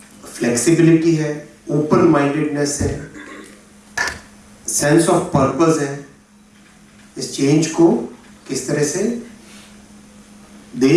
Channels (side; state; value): both; identical; correlation 1.00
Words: फ्लेक्सिबिलिटी है, ओपन माइंडेडनेस है, सेंस ऑफ पर्पस है. इस चेंज को किस तरह से